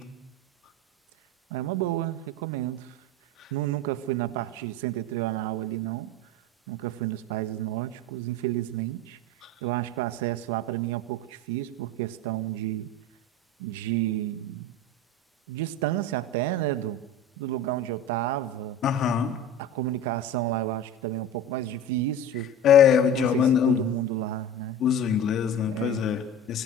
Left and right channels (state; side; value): normal; both; correlation 0.32